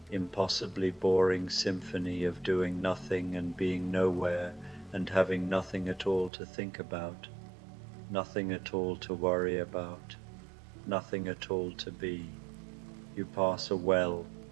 impossibly boring symphony of doing nothing and being nowhere and having nothing at all to think about, nothing at all to worry about, nothing at all to be. You pass a well.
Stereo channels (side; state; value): left; drops out; at 6.3 s